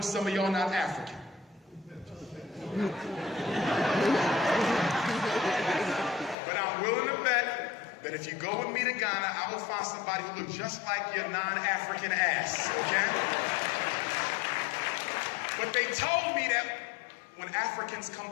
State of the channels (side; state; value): right; drops out; at 6.4 s